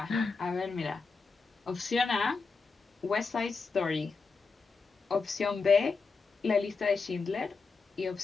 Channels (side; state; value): right; quieter; 4.5 dB